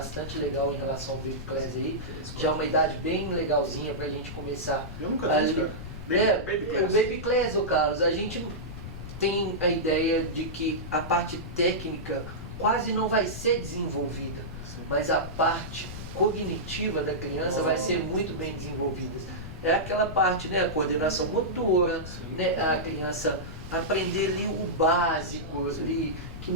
legal em relação ao Baby Class aí. Já é uma idade bem legalzinha para a gente começar. Eu nunca vi, cara. O Baby Class, ô Carlos, a gente tem a ideia de que a parte técnica quase não vai ser desenvolvida, mas a parte cognitiva da criança vai ser muito bem desenvolvida. É aquela parte, né, a coordenação motora, né, a criança aprender ali o básico, ali, que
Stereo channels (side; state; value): left; noise; rumble, 10 dB below the sound